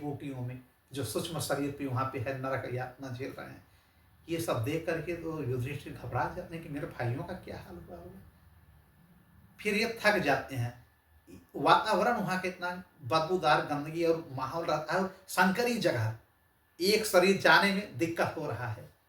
में, जो सूक्ष्म शरीर पे वहाँ पे है, नरक यातना झेल रहे हैं। ये सब देख करके तो युधिष्ठिर घबरा जाते हैं कि मेरे भाइयों का क्या हाल हुआ होगा। फिर ये थक जाते हैं। वातावरण वहाँ के इतना बदबूदार, गंदगी और माहौल रहता है, संकरी जगह, एक शरीर जाने में दिक्कत हो रहा है,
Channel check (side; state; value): both; identical; correlation 1.00